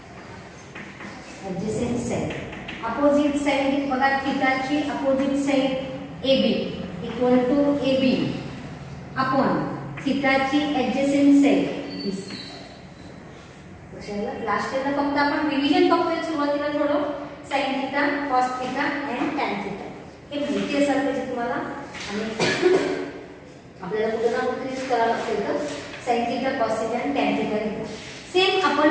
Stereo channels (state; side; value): identical; both; correlation 1.00